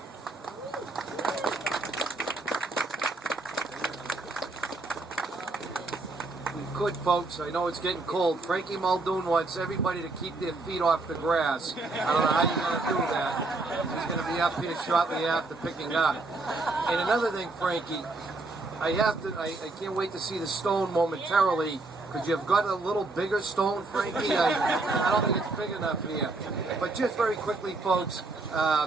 Good, folks. I know it's getting cold. Frankie Muldoon wants everybody to keep their feet off the grass. I don't know how you're going to do that. He's going to be up here shortly after picking up. And another thing, Frankie, I can't wait to see the stone momentarily. Could you have got a little bigger stone, Frankie? I don't think it's big enough here. But just very quickly, folks,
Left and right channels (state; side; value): quieter; left; 3.3 dB